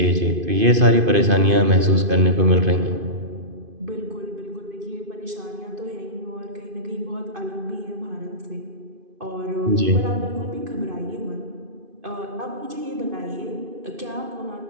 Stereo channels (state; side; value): late; left; 2.5 ms